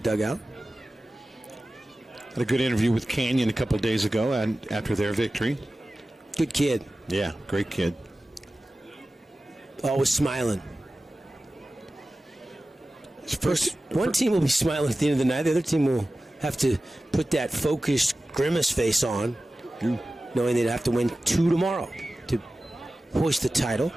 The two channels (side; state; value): both; normal; correlation 0.96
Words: Had a good interview with Canyon a couple of days ago and after their victory. Good kid. Yeah, great kid. Always smiling. One team will be smiling at the end of the night. The other team will have to put that focused grimace face on, knowing they'd have to win 2 tomorrow to hoist the title.